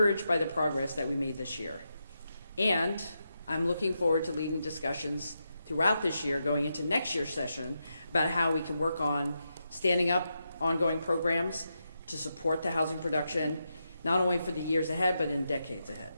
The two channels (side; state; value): both; inverted; correlation -0.85